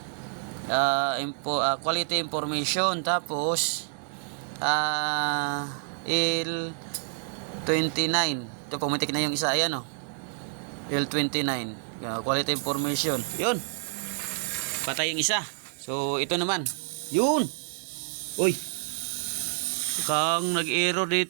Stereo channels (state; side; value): silent; left; 57 dB below the other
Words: quality information. Tapos L29. Ito, pumitik na yung isa. Ayan L29. Quality information. Yun. Patay yung isa. So, ito naman. Yun. Uy. Kang nag-error